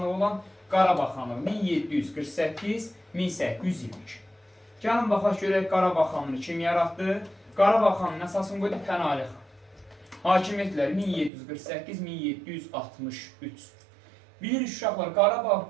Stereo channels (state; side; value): drops out; left; at 11.3 s